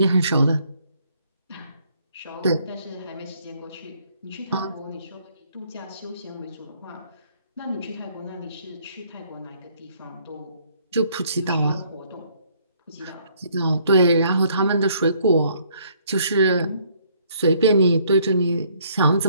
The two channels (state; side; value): inverted; both; correlation -0.65